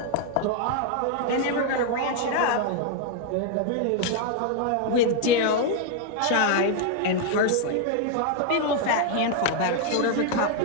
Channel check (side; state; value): both; different; correlation 0.00